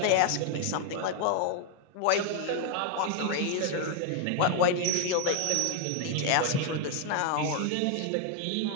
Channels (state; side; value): different; both; correlation 0.00